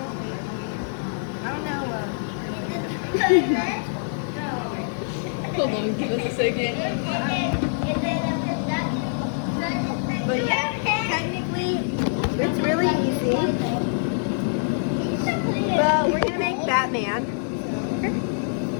don't know. Hold on, give us a second. But yeah, technically, it's really easy. But we're gonna make Batman.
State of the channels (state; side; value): silent; right; digital silence